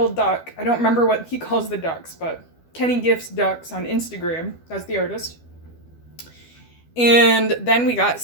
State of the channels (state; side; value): late; right; 12 ms